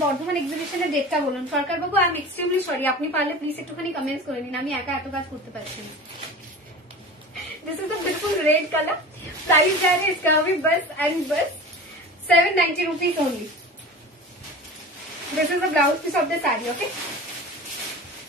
বর্ধমান এক্সিবিশনের ডেটটা বলুন। সরকার বাবু আই এম এক্সট্রিমলি সরি, আপনি পারলে প্লিজ একটুখানি কমেন্টস করে নিন, আমি একা এত কাজ করতে পারছি না। दिस इज अ बिल्कुल रेड कलर। प्राइस जा रहे इसका भी बस एंड बस 790 rupees only. This is the blouse piece of the sari, okay.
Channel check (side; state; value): both; normal; correlation 0.35